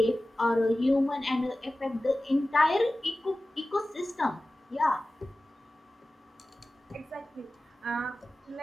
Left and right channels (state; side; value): normal; both; correlation 0.96